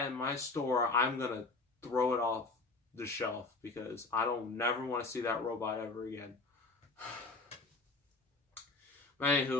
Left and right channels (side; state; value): right; quieter; 3.6 dB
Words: in my store, I'm gonna throw it off the shelf because I don't never want to see that robot ever again.